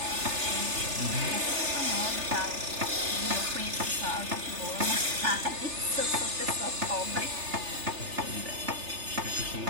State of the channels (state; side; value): late; left; 3.4 ms